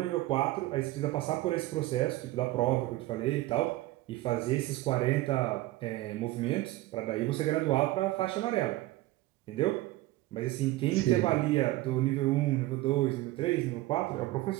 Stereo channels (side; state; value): left; quieter; 17.6 dB